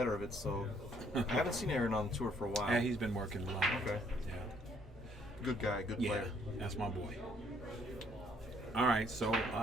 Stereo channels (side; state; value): both; normal; correlation 0.66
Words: of it. So I haven't seen Aaron on the tour for a while. Yeah, he's been working a lot. Okay. Yeah. Good guy, good Yeah, player. that's my boy. All right, so